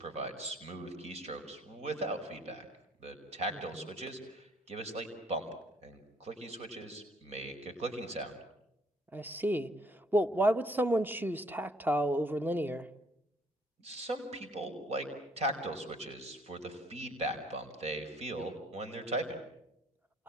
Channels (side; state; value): both; normal; correlation 0.63